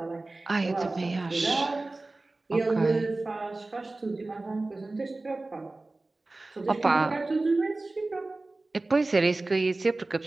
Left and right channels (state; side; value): quieter; left; 3.1 dB